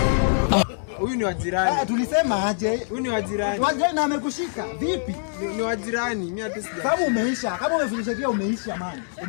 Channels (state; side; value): silent; right; digital silence